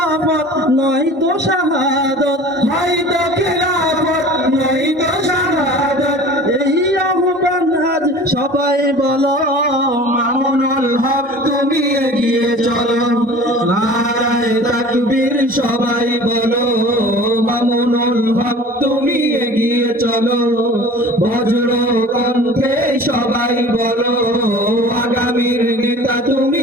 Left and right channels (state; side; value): normal; both; correlation 0.42